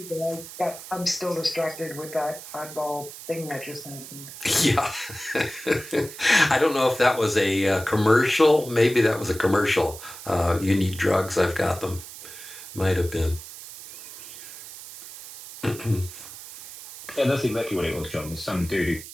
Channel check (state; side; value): noise; right; hiss, 14 dB below the sound